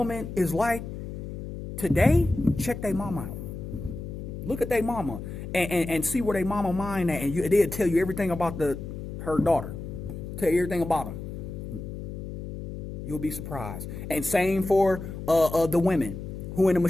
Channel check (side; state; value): left; noise; hum, 8 dB below the sound